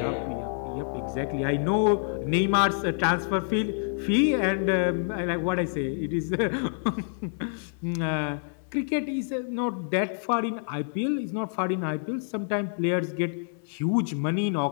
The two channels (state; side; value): silent; right; 60 dB below the other